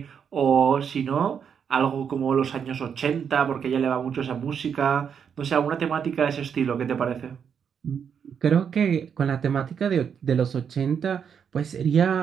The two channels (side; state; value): left; quieter; 7.4 dB